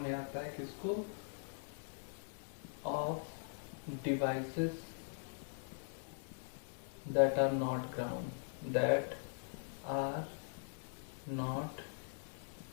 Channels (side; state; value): right; silent; 50 dB below the other